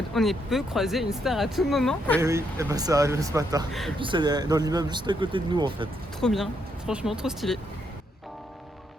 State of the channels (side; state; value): both; normal; correlation 0.76